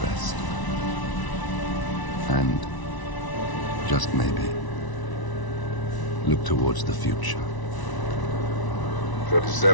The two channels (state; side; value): late; right; 1.0 ms